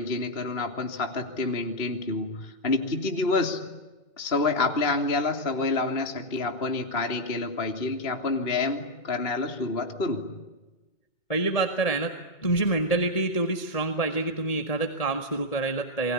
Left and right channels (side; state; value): right; late; 2.2 ms